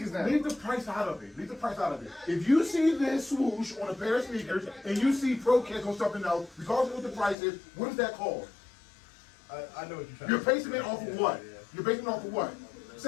now. Leave the price out of it. Leave the price out of it. If you see this swoosh on a pair of sneakers and you see Pro Kicks on something else, regardless of what the price is, what is that called? I know what you're trying You're to say. basing it off of what? You're basing it off of what?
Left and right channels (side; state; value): right; drops out; at 7.4 s